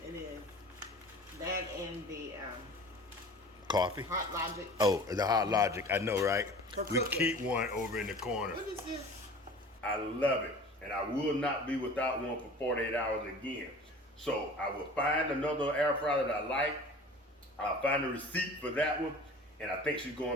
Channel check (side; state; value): both; normal; correlation 0.42